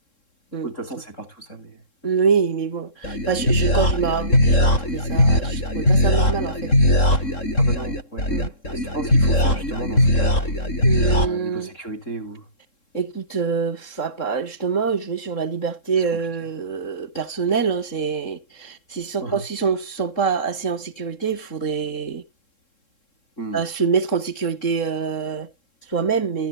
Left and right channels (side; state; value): right; late; 3.7 ms